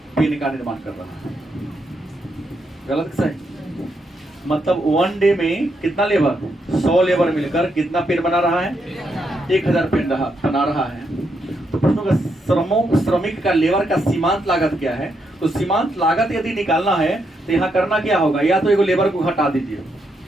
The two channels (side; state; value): both; normal; correlation 0.79